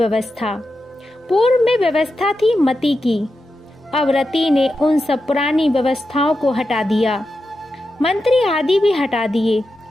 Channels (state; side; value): normal; both; correlation 0.89